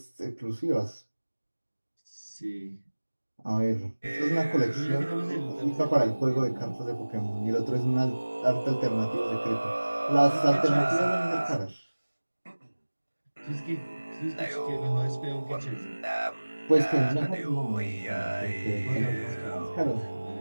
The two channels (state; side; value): inverted; both; correlation -1.00